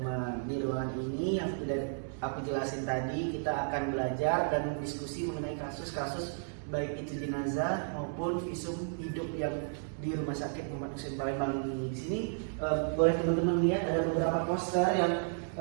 Di ruangan ini yang sudah aku jelasin tadi, kita akan belajar dan diskusi mengenai kasus-kasus baik itu jenazah maupun visum hidup yang di Rumah Sakit Muhammad Hussein Palembang ini. Di sini boleh teman-teman lihat ada beberapa poster yang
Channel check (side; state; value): left; silent; 56 dB below the other